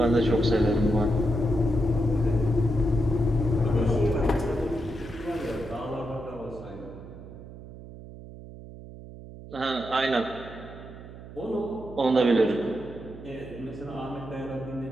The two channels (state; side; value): noise; right; hum, 15 dB below the sound